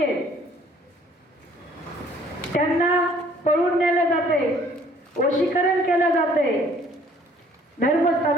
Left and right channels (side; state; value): both; normal; correlation 0.58